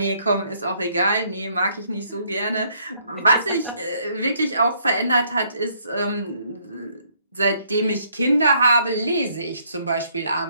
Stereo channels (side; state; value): both; inverted; correlation -0.68